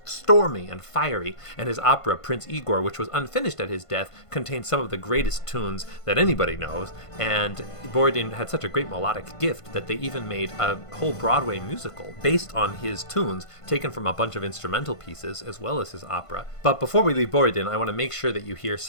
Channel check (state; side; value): late; right; 1.5 ms